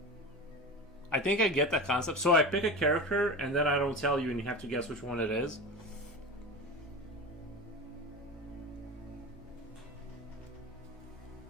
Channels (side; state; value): both; normal; correlation 0.29